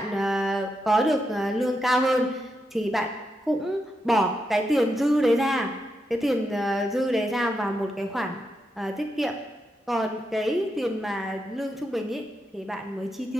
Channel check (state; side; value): normal; both; correlation 0.84